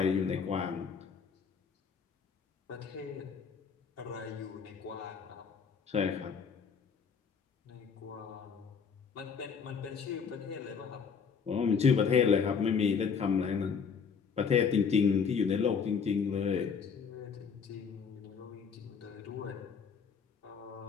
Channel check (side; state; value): right; quieter; 6.2 dB